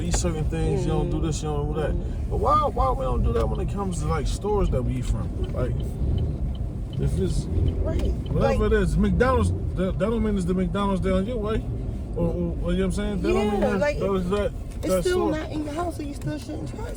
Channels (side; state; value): both; identical; correlation 1.00